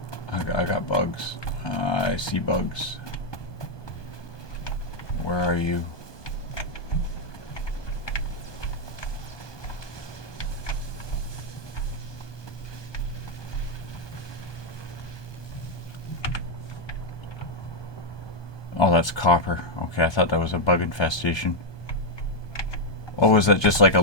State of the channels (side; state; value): right; late; 1.2 ms